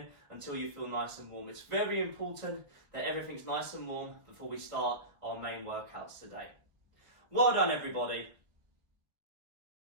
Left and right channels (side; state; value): left; late; 1.3 ms